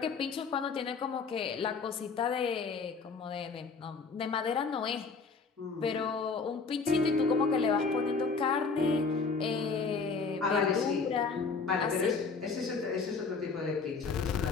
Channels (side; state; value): right; quieter; 4.8 dB